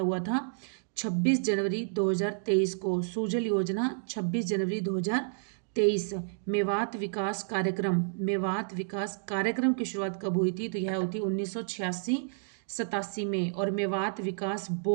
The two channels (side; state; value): left; silent; digital silence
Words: था 26 जनवरी 2023 को। सुजल योजना 26 जनवरी 2023। मेवात विकास कार्यक्रम, मेवात विकास कार्यक्रम की शुरुआत कब हुई थी? तो यह हुई थी 1986-87 में। और मेवात विकास